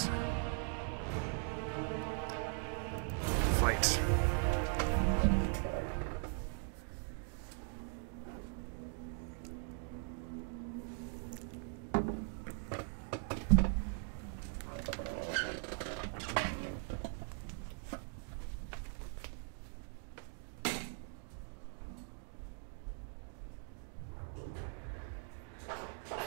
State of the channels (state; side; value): silent; left; 51 dB below the other